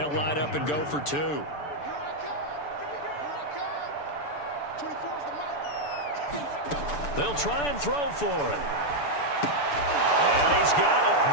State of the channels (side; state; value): right; late; 6.9 ms